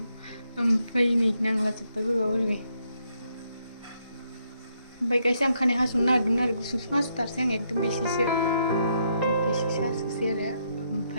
ओमफ्राय नै नांलाजोब्बाय बोरैबा बोरैबि ओमफ्राय गाइस आं खानाय हास'नो नागिरदोंमोन आरो गुसुं गुसुं हास'थारसै आं एकदम बेसेसो हास'सै आरो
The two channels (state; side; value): inverted; both; correlation -0.77